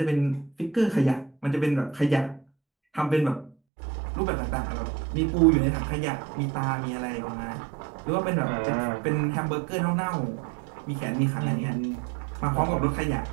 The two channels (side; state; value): left; drops out; at 3.5 s